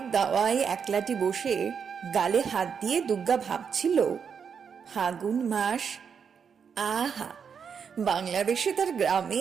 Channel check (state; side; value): quieter; left; 6.7 dB